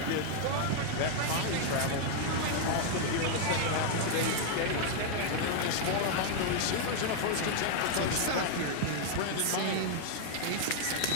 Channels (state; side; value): different; both; correlation 0.00